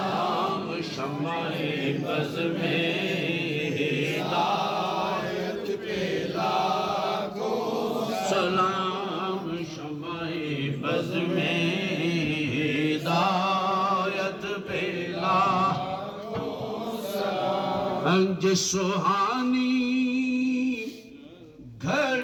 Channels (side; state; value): both; identical; correlation 1.00